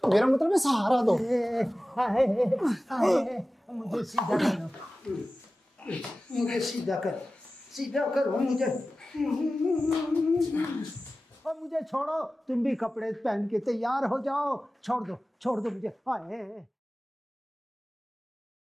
मतलब है सहारा दो। मुझे सीधा करो, मुझे सीधा कर, सीधा करो मुझे। और मुझे छोड़ो, तुम भी कपड़े पहन के तैयार हो जाओ। छोड़ दो मुझे।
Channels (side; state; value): both; normal; correlation 0.95